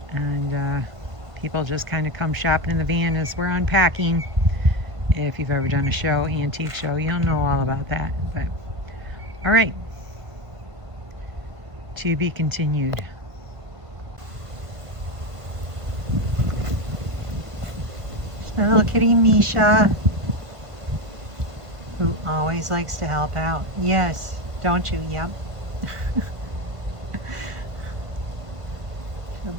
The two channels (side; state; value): left; late; 1.5 ms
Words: people just kind of come shopping in the van as we're unpacking. If you've ever done a show, antique show, you'll know all about that. But all right, to be continued. My little kitty Misha, who always likes to help out. Yes, don't you? Yep. She'll